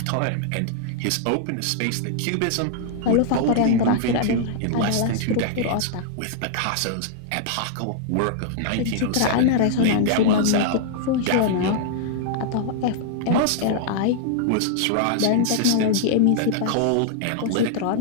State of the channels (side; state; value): both; different; correlation -0.01